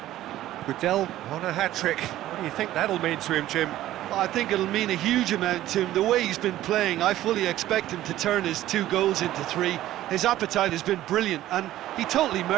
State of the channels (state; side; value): quieter; left; 14.1 dB